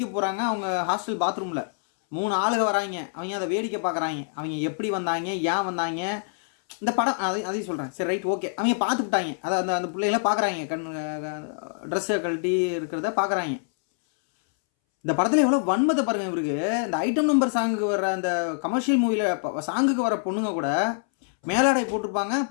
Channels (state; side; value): silent; right; 61 dB below the other